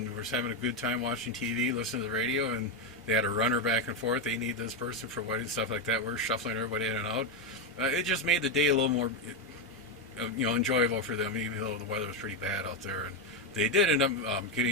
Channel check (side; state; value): both; normal; correlation 0.07